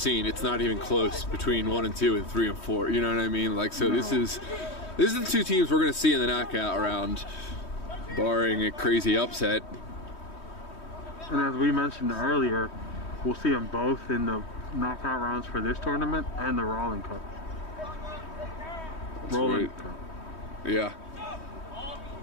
it's not even close between 1 and 2 and 3 and 4. You know what I mean? Like, so no. This is the 2 teams we're going to see in the knockout round, barring a crazy upset. And as we mentioned earlier, we'll see them both in the knockout rounds for this tournament and the Rowland Cup. That's Rowland right. Cup. Yeah.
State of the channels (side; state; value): right; late; 3.1 ms